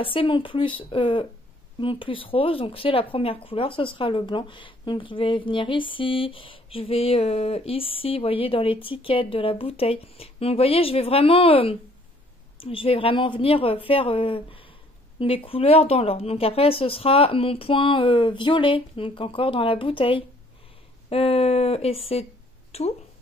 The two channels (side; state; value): both; normal; correlation 0.61